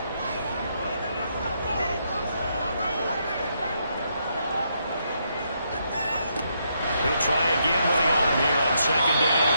He'll try again with the arm here on second down.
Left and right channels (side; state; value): both; inverted; correlation -0.77